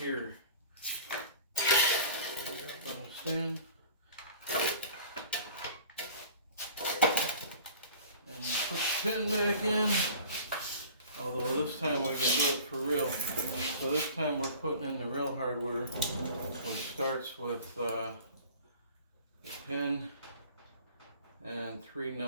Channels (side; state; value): both; inverted; correlation -0.45